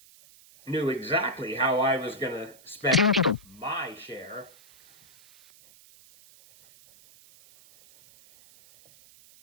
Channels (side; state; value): right; noise; hiss, 25 dB below the sound